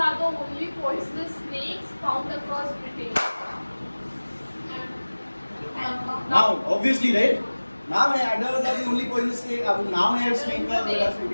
the only poisonous snakes found across Britain. Now, obviously, right? Naam hai, adders are the only poisonous snake. अब नाम है snake का,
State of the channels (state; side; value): inverted; both; correlation -1.00